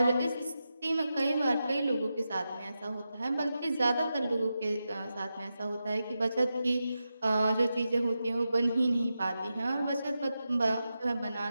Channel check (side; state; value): both; inverted; correlation -0.90